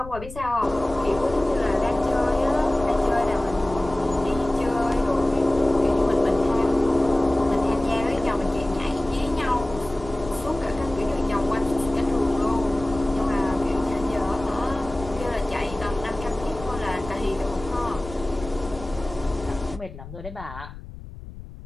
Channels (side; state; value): left; noise; rumble, 13 dB below the sound